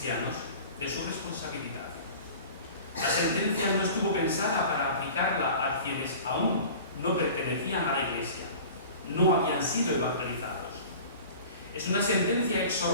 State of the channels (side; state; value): both; inverted; correlation -0.41